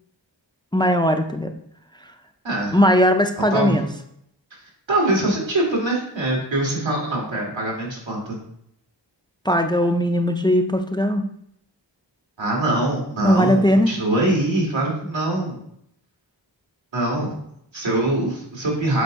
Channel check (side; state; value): both; normal; correlation 0.45